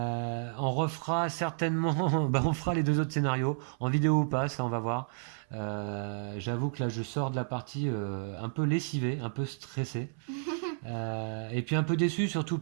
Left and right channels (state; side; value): silent; left; 57 dB below the other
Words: refera certainement, on fera les deux autres scénarios en vidéo ou pas, ça on va voir. J'avoue que là je sors de la partie un peu lessivé, un peu stressé, et puis un peu déçu surtout